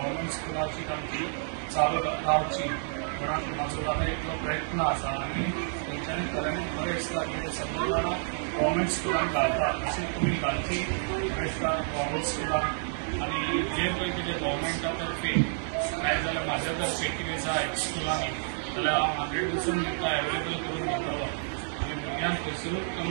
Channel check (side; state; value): left; silent; digital silence